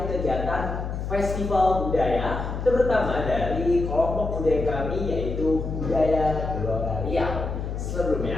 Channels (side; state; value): left; noise; hum, 4 dB below the sound